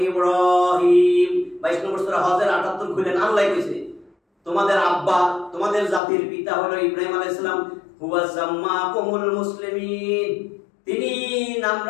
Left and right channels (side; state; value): right; drops out; at 6.0 s